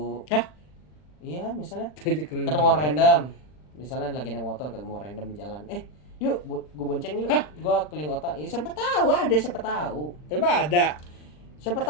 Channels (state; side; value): late; right; 40 ms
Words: Hah? Iya, misalnya Ketemu ketemu orang random. Misalnya lagi naik motor ketemu orang random di jalan. Yuk, gue bonceng yuk. Gue keliling kota. Ya siapa tahu ada, siapa tahu. Emang ada? Siapa